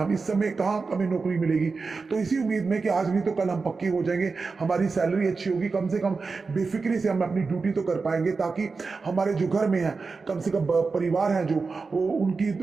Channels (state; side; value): quieter; left; 4.4 dB